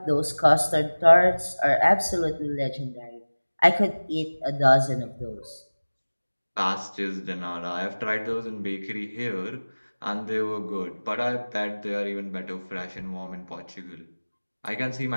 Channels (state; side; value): inverted; both; correlation -1.00